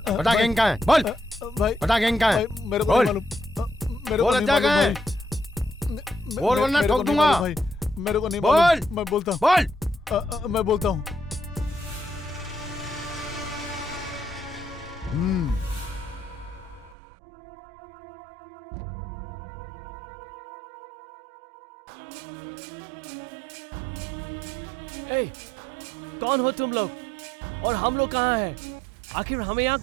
बता गैंग कहाँ है? बोल। भाई बता गैंग कहाँ है? भाई, मेरे को बोल। नहीं मालूम। मेरे को बोल नहीं अज्जा कहाँ है? मालूम बोल वरना मेरे को ठोक नहीं दूंगा। मालूम भाई, मेरे को नहीं बोल। मालूम। मैं बोलता हूँ। बोल। मैं बोलता हूँ। ए, कौन हो तुम लोग और हम लोग कहाँ हैं? आखिर हमें यहाँ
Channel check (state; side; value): drops out; left; at 16.9 s